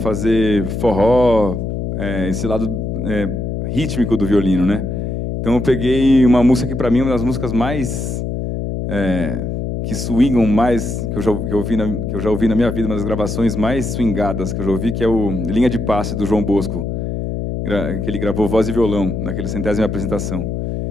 forró, esse lado rítmico do violino, né? Então eu peguei uma música que para mim é uma das músicas mais que swingam mais, que eu já ouvi na minha vida, uma das gravações mais swingadas que eu já ouvi, que é o Linha de Passe, do João Bosco, que ele gravou voz e violão, naquela 100ª apresentação.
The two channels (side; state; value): left; noise; hum, 3 dB below the sound